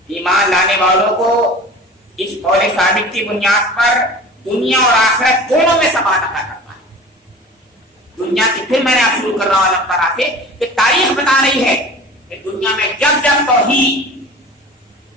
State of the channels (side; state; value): both; normal; correlation 0.39